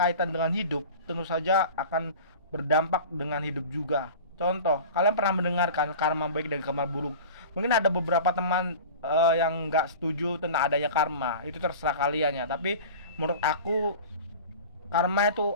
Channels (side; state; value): both; inverted; correlation -0.36